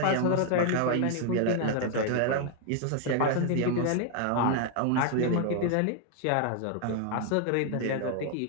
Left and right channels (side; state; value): both; different; correlation 0.00